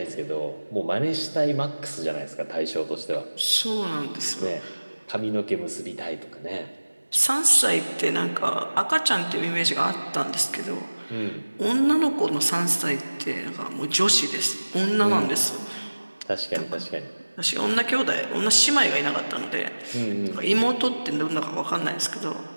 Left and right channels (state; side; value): inverted; both; correlation -1.00